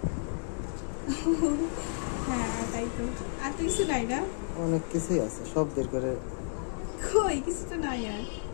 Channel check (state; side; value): silent; right; digital silence